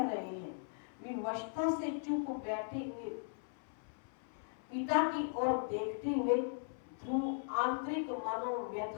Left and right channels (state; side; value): silent; right; 52 dB below the other